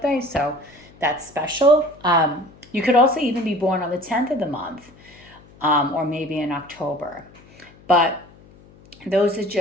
so that's special. You could also even be born on the 10th of the month, or maybe in October. But those are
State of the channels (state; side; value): noise; left; hum, 25 dB below the sound